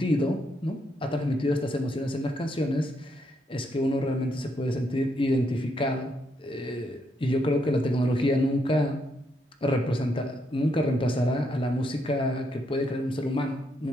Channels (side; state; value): both; normal; correlation 0.77